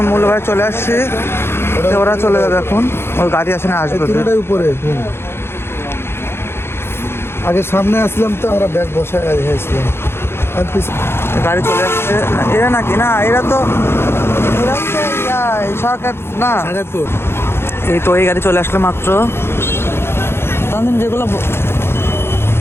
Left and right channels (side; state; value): right; late; 0.12 ms